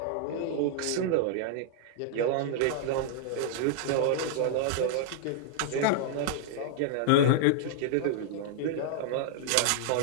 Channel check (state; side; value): different; both; correlation -0.01